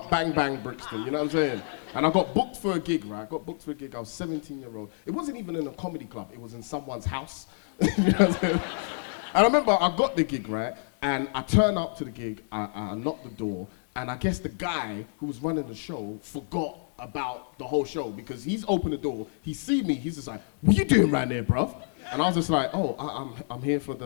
bang bang Brixton, you know what I'm saying? And I got booked for a gig, right? I was 17-year-old. It wasn't even in a comedy club, it was in someone's house. You know what I'm saying? And I remember I got the gig, right? And I turn up to the gig, I knock the door, and I guess the guy who was running the show forgot about the whole show, because he's opened the door, he see me, he's just like, what you doing right there, bruv? And I was just like, oh, I'm here for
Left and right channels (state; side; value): silent; right; 59 dB below the other